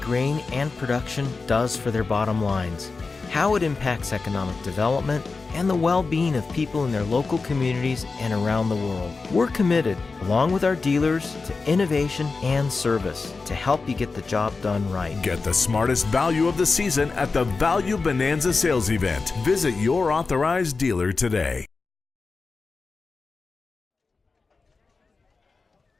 and production does for their bottom lines, how it impacts economic development, and the well-being of people in their local communities and around the world. We're committed, along with our dealers, to innovation and service to help you get the job done right. Get the smartest value of the season at the Value Bonanza sales event. Visit your authorized dealer today.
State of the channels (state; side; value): quieter; right; 4.2 dB